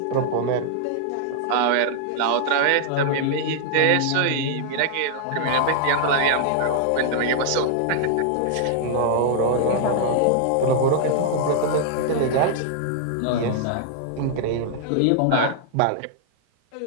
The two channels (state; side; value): different; both; correlation -0.01